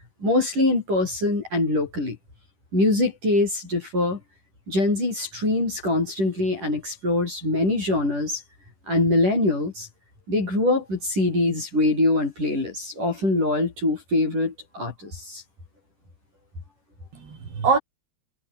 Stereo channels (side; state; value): left; late; 10 ms